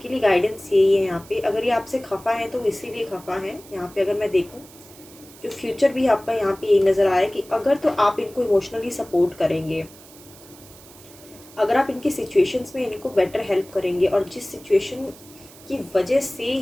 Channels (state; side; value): noise; right; hiss, 21 dB below the sound